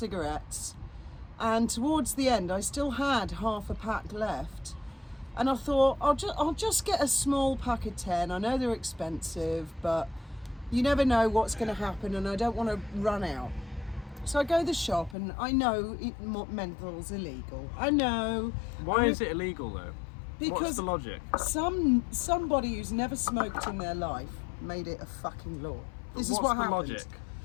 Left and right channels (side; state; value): right; drops out; at 15.2 s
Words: and towards the end, I still had half a pack left. And I thought, I'll just get a small pack of 10. I know they're expensive, but you never know what's going to happen, and I don't want to run out. So I go to the shop, and I know menthol's illegal. I know. Why is it illegal though? Because What's the logic? somebody who's never smoked in their life made it a fucking law. This is what What's the happened. logic?